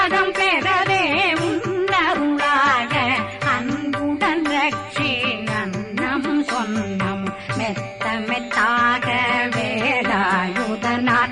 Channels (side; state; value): both; identical; correlation 1.00